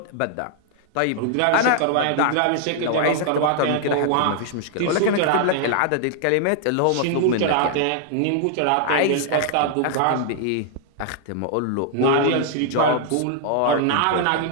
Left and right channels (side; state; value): both; different; correlation -0.01